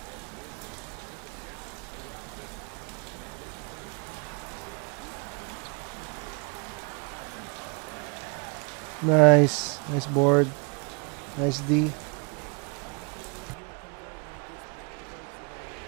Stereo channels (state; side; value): quieter; left; 35.4 dB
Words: Nice. Nice board. Nice D.